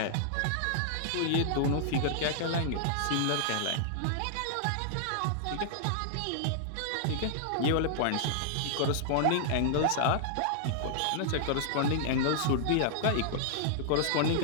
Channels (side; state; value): both; different; correlation -0.01